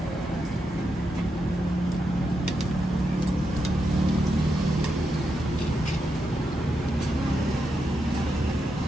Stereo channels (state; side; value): normal; both; correlation 0.85